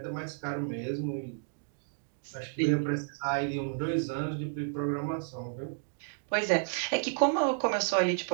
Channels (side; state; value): left; silent; digital silence